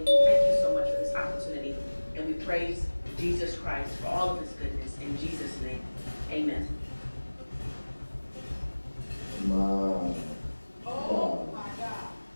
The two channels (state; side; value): inverted; both; correlation -1.00